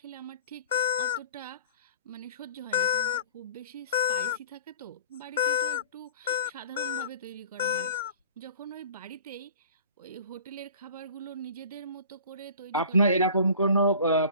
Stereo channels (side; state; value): both; inverted; correlation -0.44